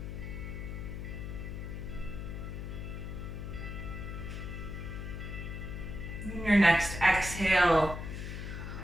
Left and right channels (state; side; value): noise; left; hum, 6 dB below the sound